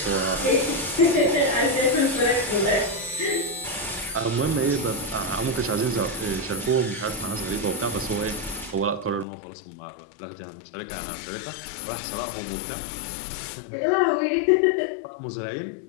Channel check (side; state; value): right; drops out; at 9.2 s